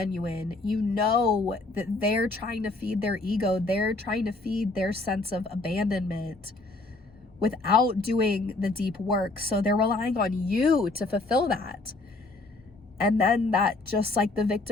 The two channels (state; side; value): quieter; right; 3.2 dB